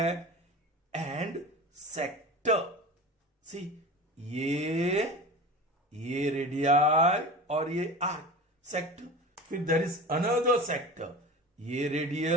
and sector. See, ये radii और ये arc sector. फिर there is another sector, ये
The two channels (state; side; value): normal; both; correlation 0.33